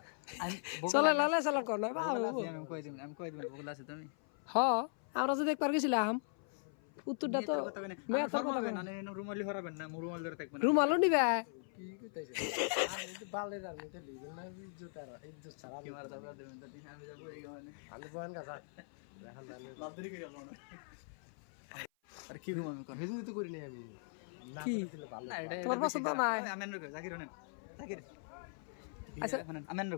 আমি চলে লালে চালান কর না আমি কই দিবেন বগলা আছে তুমি হ আমরা যদি একবার গেছিলাম উত্তরটা তো মেয়ে তো ফরমাবেন না রুমালি হরাবেন না রুমাল ধরে থাকবেন রুমালও নিবে কি কইতাছে আমি তো বালে রানি তে লিবেন না জুতার ইজ্জত ছাড়া কি মারা দাও দেবেন তো আমি যাব এই গানে আমি বয়ান গাছা এখন জানি বাদরি করে গেল না আর কি ঘুম আমি কর ভিডিও তো করি নাই আমি না কি? করলে ভালো না এটা তোমার পছন্দ নাই আমেন রকো জাকির হনেন জাকির আচ্ছা। আচ্ছা আমেন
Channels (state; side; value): silent; right; 52 dB below the other